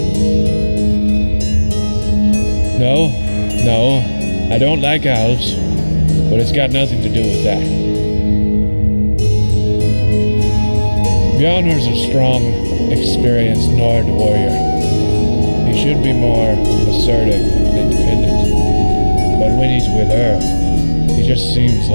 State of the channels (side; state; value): both; inverted; correlation -1.00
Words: No, I don't like elves, but it's got nothing to do with that. Bjarnor's a strong, experienced Nord warrior. He should be more assertive and independent. But when he's with her, he just seems